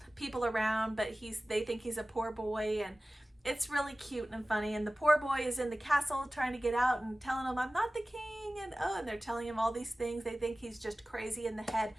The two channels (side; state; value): both; normal; correlation 0.97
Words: people around, but they think he's a poor boy, and it's really cute and funny. And the poor boy is in the castle trying to get out and telling him, I'm not the king, and and they're telling him all these things. They think he's just crazy in the head.